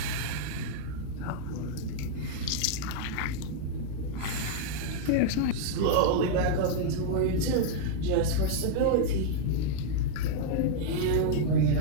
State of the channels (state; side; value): different; both; correlation -0.01